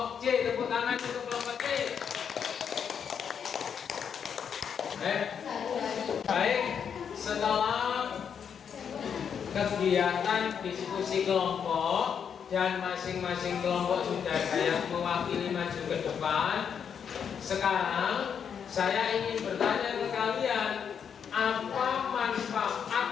C. Tepuk tangan untuk kelompok C. Baik, setelah kegiatan diskusi kelompok dan masing-masing kelompok sudah ada yang mewakili maju ke depan. Sekarang saya ingin bertanya ke kalian, apa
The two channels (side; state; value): right; quieter; 7.5 dB